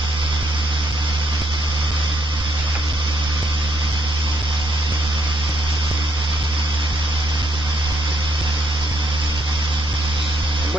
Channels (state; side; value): normal; both; correlation 0.73